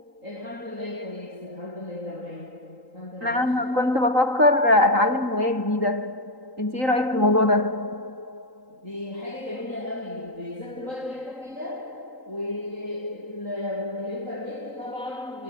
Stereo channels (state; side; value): late; left; 3.8 ms